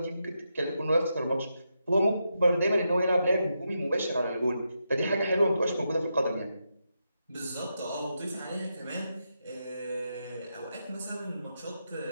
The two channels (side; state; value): both; inverted; correlation -0.85